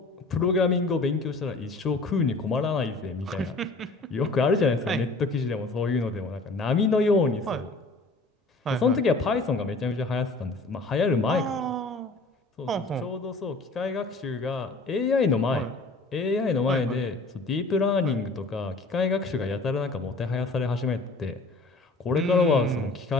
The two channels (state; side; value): quieter; right; 3.2 dB